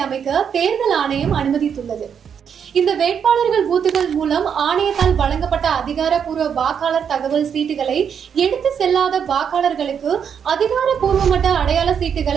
அமைக்க தேர்தல் ஆணையம் அனுமதித்துள்ளது. இந்த வேட்பாளர்கள் பூத்துகள் மூலம் ஆணையத்தால் வழங்கப்பட்ட அதிகாரப்பூர்வ வாக்காளர் தகவல் சீட்டுகளை எடுத்து செல்லாத வாக்காளர்களுக்கு அதிகாரப்பூர்வமற்ற அடையாள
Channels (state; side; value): quieter; left; 7.6 dB